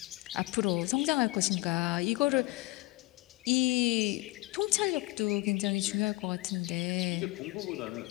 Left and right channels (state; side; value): quieter; right; 22.3 dB